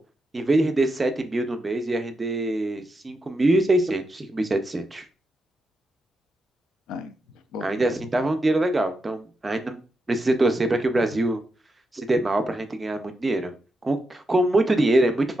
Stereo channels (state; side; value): normal; both; correlation 0.85